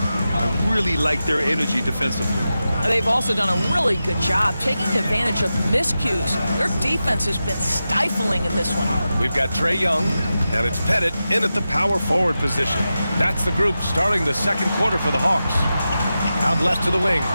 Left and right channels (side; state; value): both; inverted; correlation -0.92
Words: I really like their energy defensively. They've also done a really good job taking advantage of miscues. Their defense has been stifling in this one. We've got Trae Young, and it's Pettit in at the power forward position. That's the group starting the second quarter for the Hawks. Out left to the wing.